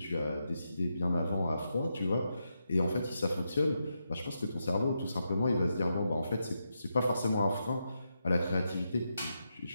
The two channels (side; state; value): both; inverted; correlation -0.85